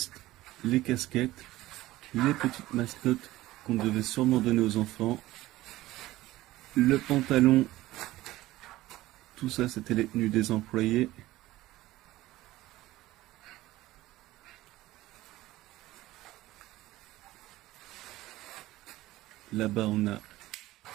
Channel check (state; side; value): quieter; left; 16.9 dB